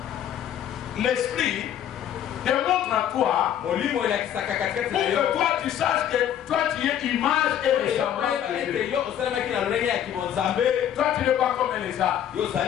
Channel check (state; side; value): quieter; right; 10.3 dB